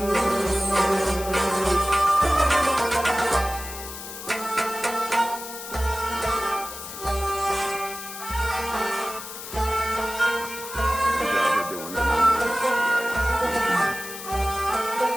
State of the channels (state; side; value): noise; left; hiss, 11 dB below the sound